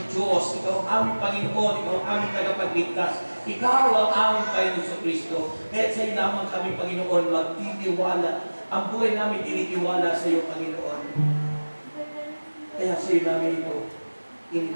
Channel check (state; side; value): inverted; both; correlation -1.00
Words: Diyos, ikaw ang aming Panginoon, ikaw ang aming tagapagligtas, ikaw ang aming Panginoon sa Kristo. Kaya sa iyo lamang kami, Panginoon, magtitiwala. Ang buhay namin tinitiwala sa iyo, Panginoon. Kaya sa iyo namin ito,